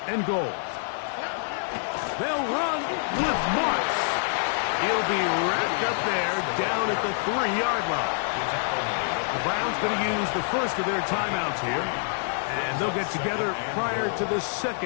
and goal. They'll run with Marks. He'll be wrapped up there down at the 3-yard line. The Browns going to use the first of their timeouts here, and they'll get together prior to the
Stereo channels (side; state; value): right; silent; 58 dB below the other